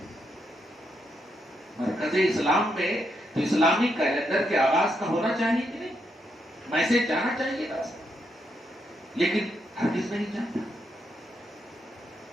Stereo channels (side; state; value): both; normal; correlation 0.79